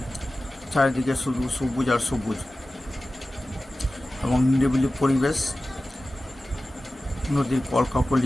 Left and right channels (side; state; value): both; normal; correlation 0.95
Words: চারিদিকে শুধু সবুজ আর সবুজ এবং নিরিবিলি পরিবেশ, নদীর